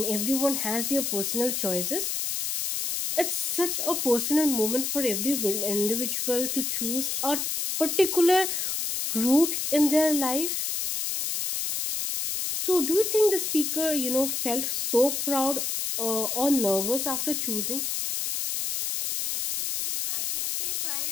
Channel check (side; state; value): left; noise; hiss, 1 dB below the sound